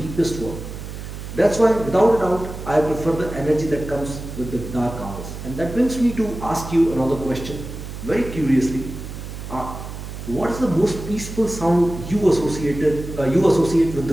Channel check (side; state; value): right; noise; hum, 10 dB below the sound